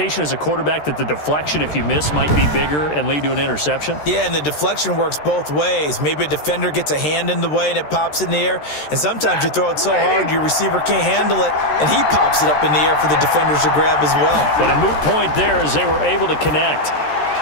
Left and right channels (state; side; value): late; right; 13 ms